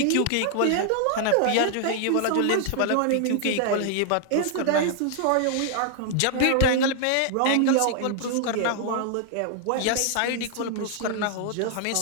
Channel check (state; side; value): different; both; correlation 0.00